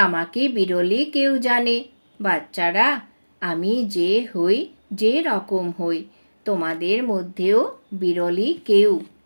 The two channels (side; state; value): both; inverted; correlation -1.00